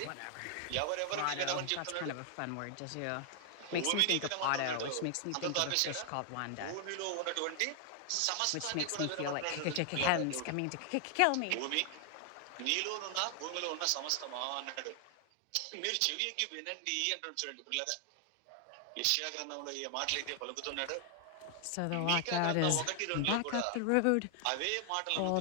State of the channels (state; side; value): different; both; correlation 0.00